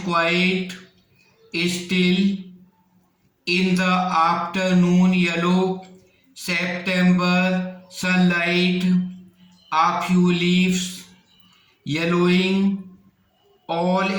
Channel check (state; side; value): identical; both; correlation 1.00